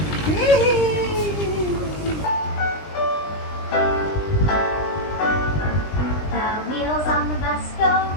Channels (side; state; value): right; late; 20 ms